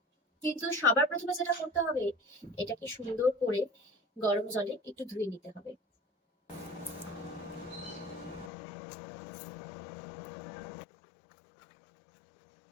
কিন্তু সবার প্রথমে যেটা করতে হবে, এটাকে সুন্দর করে গরম জলে একটু ধুয়ে নিতে হবে।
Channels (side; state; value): right; drops out; at 8.5 s